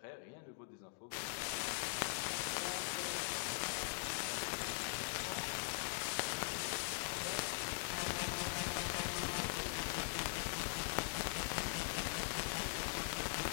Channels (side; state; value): right; silent; digital silence